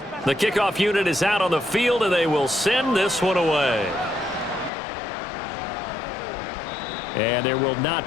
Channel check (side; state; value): right; drops out; at 4.7 s